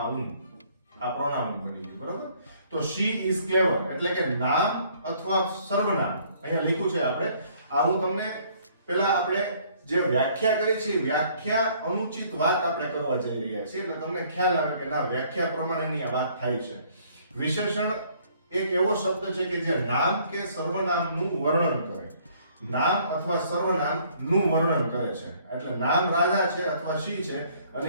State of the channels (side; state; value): both; inverted; correlation -0.61